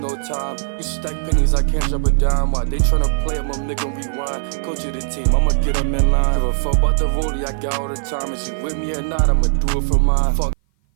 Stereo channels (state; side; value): silent; left; 56 dB below the other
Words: time. You stack pennies, I can't drop a dime. Why they tryna play it, my nigga rewind. Coach of the team, I'ma get them in line. Give a fuck about the rollie I got all the time. If she with me or not, I'ma do it for mine. Fuck.